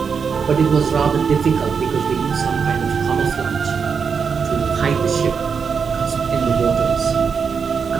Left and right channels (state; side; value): quieter; left; 6.1 dB